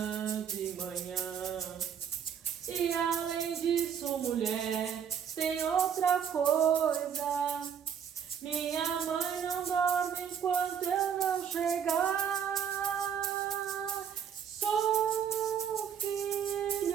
de manhã. E além disso, mulher, tem outra coisa. Minha mãe não dorme enquanto eu não chegar. Sou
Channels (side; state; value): left; quieter; 8.0 dB